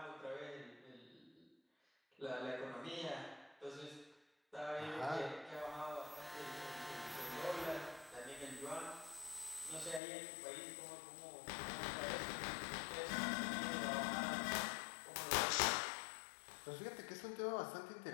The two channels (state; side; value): drops out; right; at 10.0 s